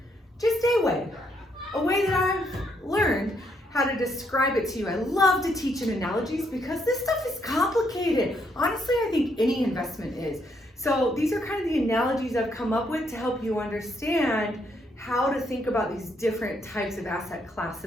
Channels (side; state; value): both; normal; correlation 0.74